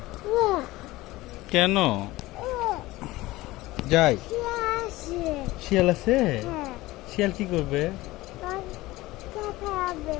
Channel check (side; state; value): right; quieter; 18.8 dB